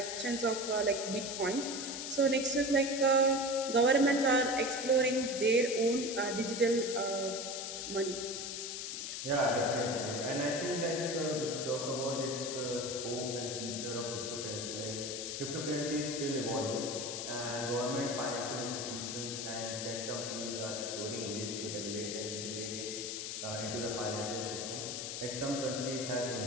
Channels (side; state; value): left; noise; hiss, 5 dB below the sound